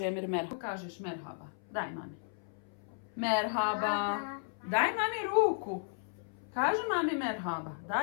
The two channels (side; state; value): right; silent; 55 dB below the other